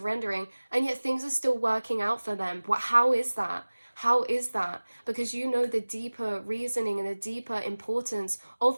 and yet things are still working out for them. How is that? How is that? Because you know the deeper reasoning and the deeper importance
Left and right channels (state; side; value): inverted; both; correlation -1.00